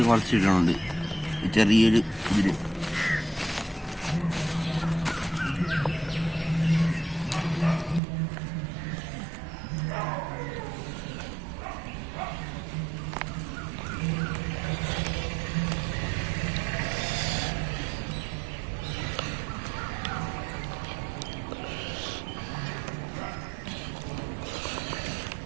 കുറച്ച് ഇടുന്നുണ്ട്. ചെറിയൊരു ഇതിൽ.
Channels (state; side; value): drops out; left; at 8.0 s